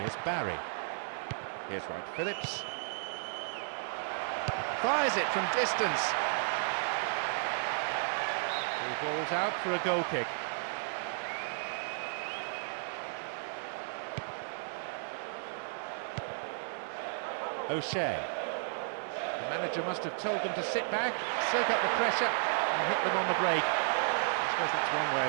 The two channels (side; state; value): left; silent; digital silence